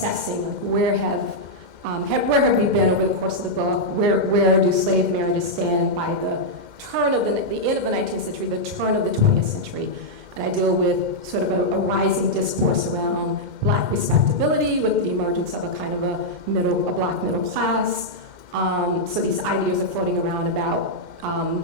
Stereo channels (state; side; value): late; left; 2.1 ms